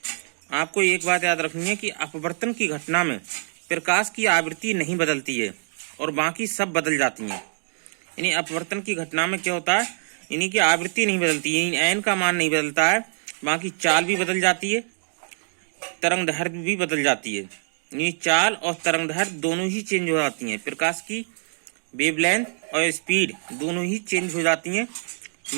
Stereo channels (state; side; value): silent; left; digital silence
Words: आपको एक बात याद रखनी है कि अपवर्तन की घटना में प्रकाश की आवृत्ति नहीं बदलती है और बाकी सब बदल जाती हैं। यानी अपवर्तन की घटना में क्या होता है, यानी कि आवृत्ति नहीं बदलती, यानी एन का मान नहीं बदलता है, बाकी चाल भी बदल जाती है, तरंग दैर्घ्य भी बदल जाती है। यानी चाल और तरंग दैर्घ्य दोनों ही चेंज हो जाती हैं। प्रकाश की वेवलेंथ और स्पीड दोनों ही चेंज हो जाती हैं,